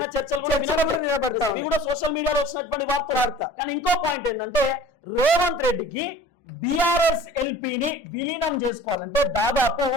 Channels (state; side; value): normal; both; correlation 0.45